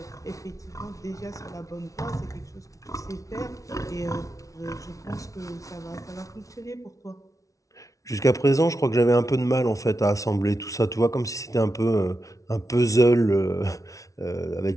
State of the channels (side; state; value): right; late; 0.16 ms